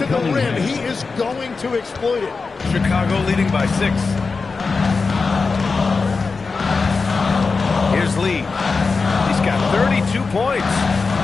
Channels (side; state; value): right; quieter; 4.4 dB